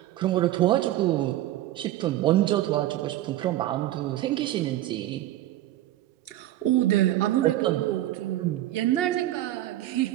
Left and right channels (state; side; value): quieter; left; 14.4 dB